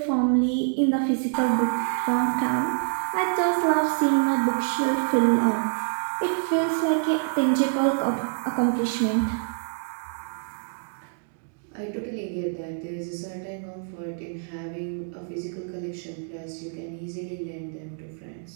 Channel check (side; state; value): left; silent; digital silence